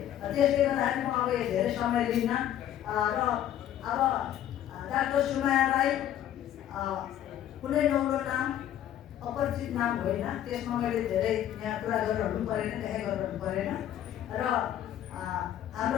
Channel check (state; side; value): quieter; right; 11.4 dB